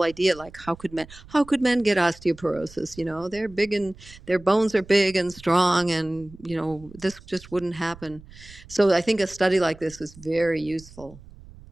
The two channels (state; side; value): noise; right; rumble, 20 dB below the sound